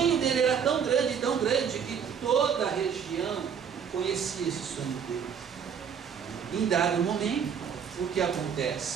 dele era tão grande, que toda a região conhecia esse sonho dele. Em dado momento, o que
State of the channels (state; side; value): quieter; left; 7.4 dB